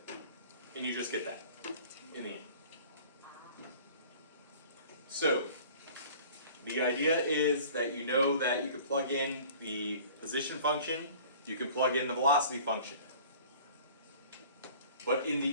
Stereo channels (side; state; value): both; inverted; correlation -0.47